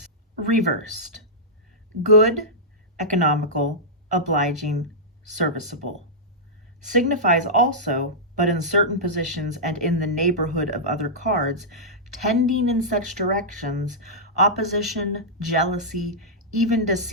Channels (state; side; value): normal; both; correlation -0.12